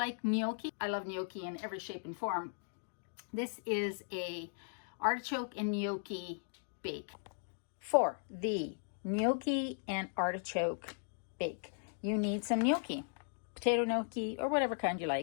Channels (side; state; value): right; silent; digital silence